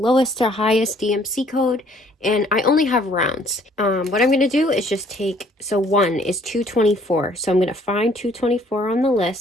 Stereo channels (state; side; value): normal; both; correlation 0.61